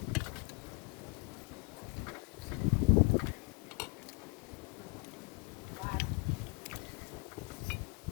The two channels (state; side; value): quieter; right; 29.7 dB